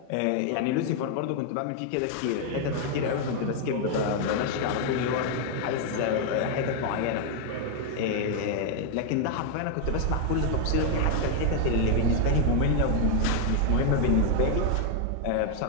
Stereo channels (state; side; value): different; both; correlation 0.00